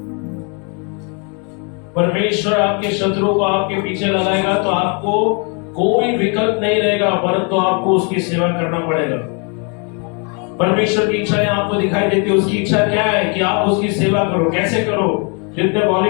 परमेश्वर आपके शत्रुओं को आपके पीछे लगाएगा तो आपको कोई विकल्प नहीं रहेगा, परंतु आपको उसकी सेवा करना पड़ेगा। परमेश्वर की इच्छा आपको दिखाई देती है। उसकी इच्छा क्या है कि आप उसकी सेवा करो। कैसे करो? जितने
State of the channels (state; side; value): quieter; right; 36.5 dB